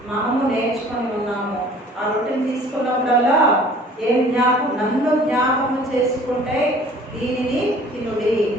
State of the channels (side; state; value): both; normal; correlation 0.51